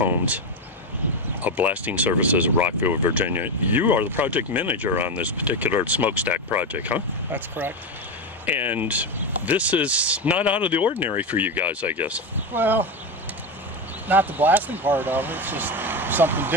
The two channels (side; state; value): both; normal; correlation 0.14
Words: of Blasting Services of Rockville, Virginia. You are the project manager on this particular smokestack project, huh? That's correct. And this is not out of the ordinary for you guys, I guess. Well, not the blasting part of it. It's just something